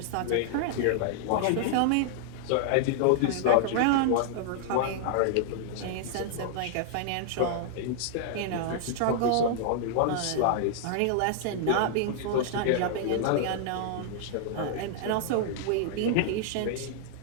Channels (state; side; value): different; both; correlation -0.01